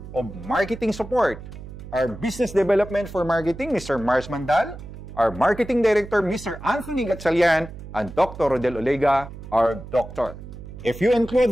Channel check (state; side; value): noise; right; hum, 13 dB below the sound